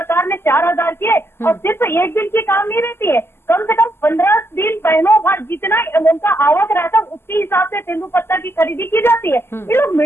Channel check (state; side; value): late; right; 0.12 ms